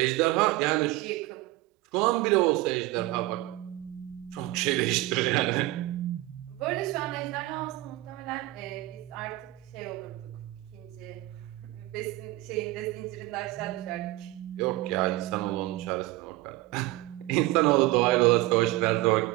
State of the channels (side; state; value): left; quieter; 18.2 dB